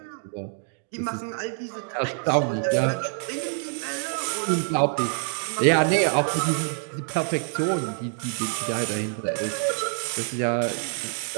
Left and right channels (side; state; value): left; silent; 56 dB below the other